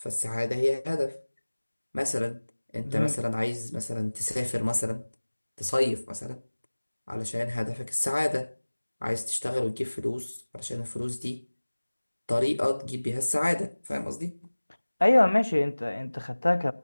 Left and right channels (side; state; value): both; inverted; correlation -1.00